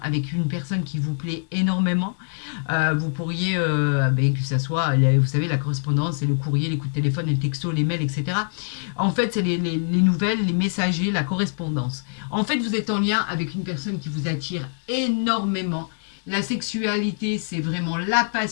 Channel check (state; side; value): silent; right; digital silence